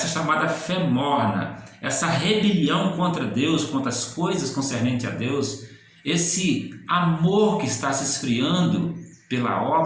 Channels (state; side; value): identical; both; correlation 1.00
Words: chamada fé morna, essa rebelião contra Deus, contra as coisas concernentes a Deus, esse amor que está se esfriando pela